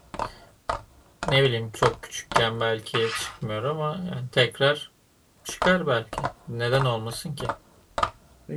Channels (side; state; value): both; identical; correlation 1.00